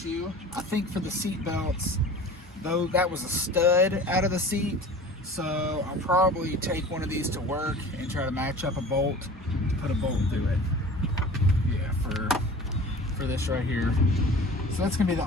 I think, for the seat belts, though, that was a stud out of the seat, so I'll probably take one of these to work and try to match up a bolt to put a bolt through it. Yeah, for this right here. So that's gonna be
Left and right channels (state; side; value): normal; both; correlation 0.41